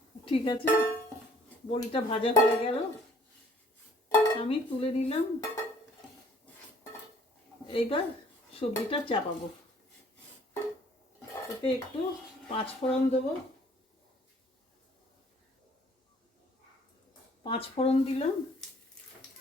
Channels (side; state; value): both; normal; correlation 0.58